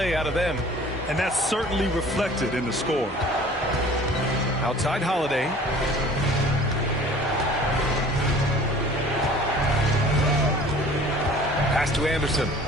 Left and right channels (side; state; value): both; normal; correlation 0.48